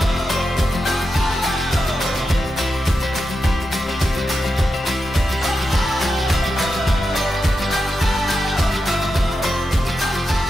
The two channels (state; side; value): normal; both; correlation 0.88